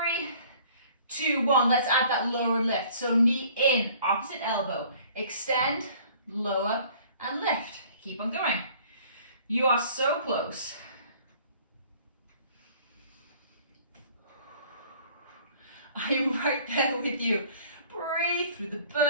2, 1. Let's add that lower lift. So knee in, opposite elbow. Extend, lower, and lift. Keep on going. You are so close. I'm right there with you. Breathe through the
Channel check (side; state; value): both; inverted; correlation -0.53